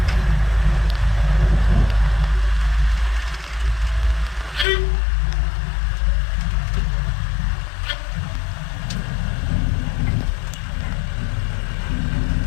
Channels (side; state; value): right; drops out; at 4.7 s